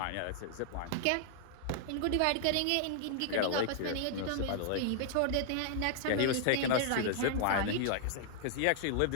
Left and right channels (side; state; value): both; different; correlation -0.01